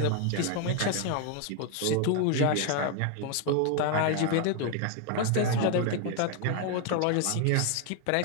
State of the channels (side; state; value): both; different; correlation 0.01